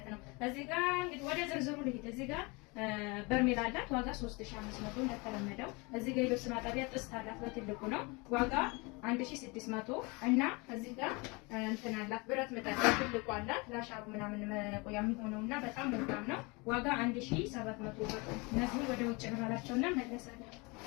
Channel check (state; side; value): quieter; right; 27.5 dB